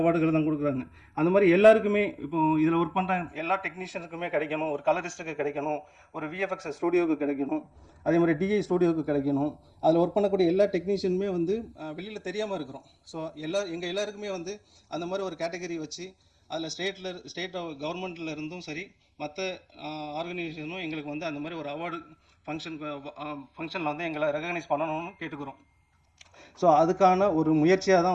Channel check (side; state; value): both; identical; correlation 1.00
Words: தான் கொடுக்குறாங்க. அந்த மாதிரி எல்லாருக்குமே இப்போ இதில் ஒர்க் பண்ணுற எல்லா டெக்னீஷியனுக்குமே கிடைக்கணும், ஒரு கலரிஸ்ட்டுக்கு கிடைக்கணும், ஒரு விஎஃப்எக்ஸ் ஸ்டூடியோவுக்கு கிடைக்கணும், அதே மாதிரி டிஐ ஸ்டூடியோவுக்கு கிடைக்கணும். அதில் ஒர்க் பண்ணக்கூடிய எல்லா டெக்னீஷியனுமே வந்து வெளியில் தெரியாமல் இருக்கிறோம். ஸோ எங்கள் எல்லாருக்குமே வந்து அந்த மாதிரி ஒரு கேட்டகரி வச்சு அதில் ஸ்டேட் கவர்மெண்ட்டில் இருந்தும் சரி மற்ற ஆர்கனைசேஷனும் எங்களுக்கு வந்து அந்த மாதிரி ஒரு அவார்டு ஃபங்க்ஷனில் வந்து எங்களை ரெகக்னைஸ் பண்ணணும்னு கேட்டுக்கிறோம். ஸோ அதுக்கான ஒரு முயற்சியாக